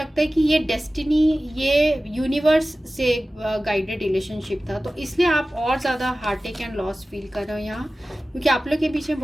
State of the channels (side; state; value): both; normal; correlation 0.96